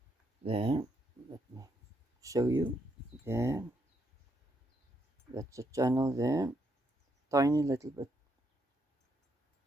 There, let me show you. There, that's the channel there. Tiny little bit,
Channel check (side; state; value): both; normal; correlation 0.76